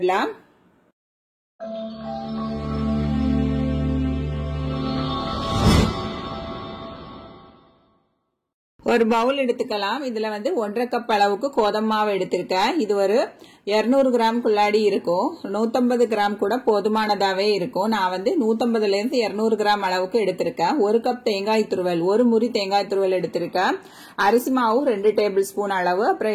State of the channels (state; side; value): identical; both; correlation 1.00